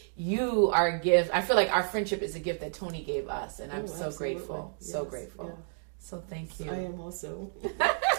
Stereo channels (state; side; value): silent; left; digital silence